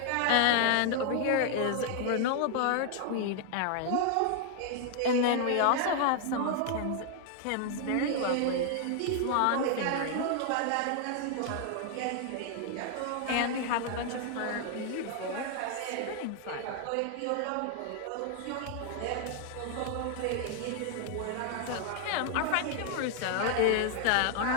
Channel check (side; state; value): both; different; correlation 0.00